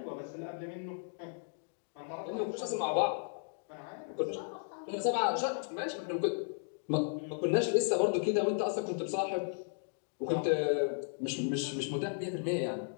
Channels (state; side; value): silent; right; digital silence